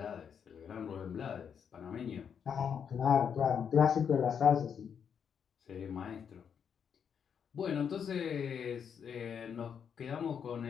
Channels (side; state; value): right; quieter; 7.5 dB